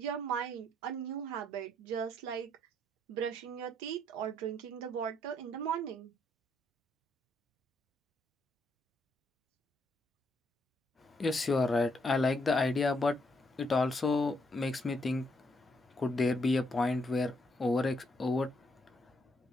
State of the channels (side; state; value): both; normal; correlation 0.74